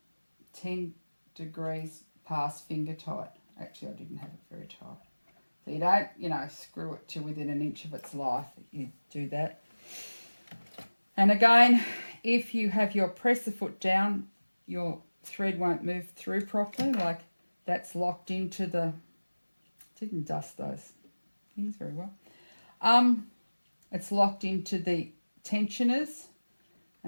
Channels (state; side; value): inverted; both; correlation -1.00